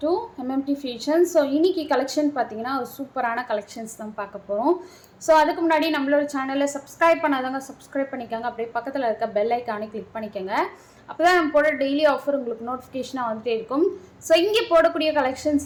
to MMT Fashion. So, இன்னைக்கு collection பார்த்தீங்கன்னா ஒரு சூப்பரான collections தான் பார்க்க போறோம். So, அதுக்கு முன்னாடி நம்மளோட சேனலை சப்ஸ்கிரைப் பண்ணாதவங்க சப்ஸ்கிரைப் பண்ணிக்கோங்க. அப்படியே பக்கத்தில் இருக்க பெல் ஐக்கானை கிளிக் பண்ணிக்கோங்க. அப்பதான் நம்ம போட டெய்லி ஆஃபர் உங்களுக்கு நோட்டிஃபிகேஷனாக வந்துட்டே இருக்கும். ஸோ இங்கே போடக்கூடிய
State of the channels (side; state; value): both; identical; correlation 1.00